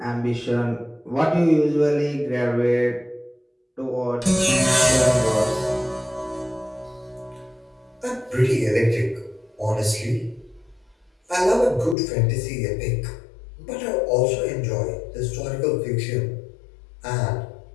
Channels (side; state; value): right; drops out; at 12.0 s